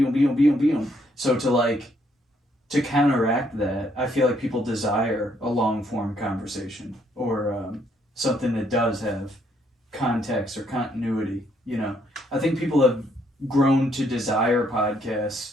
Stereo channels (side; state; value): both; normal; correlation 0.71